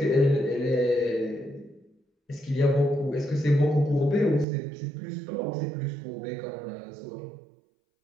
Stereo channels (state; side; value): drops out; left; at 4.5 s